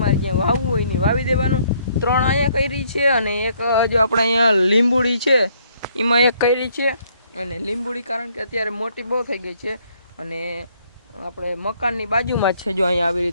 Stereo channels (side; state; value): both; inverted; correlation -0.67